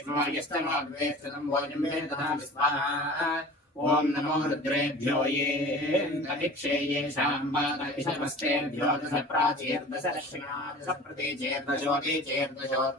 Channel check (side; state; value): both; normal; correlation 0.40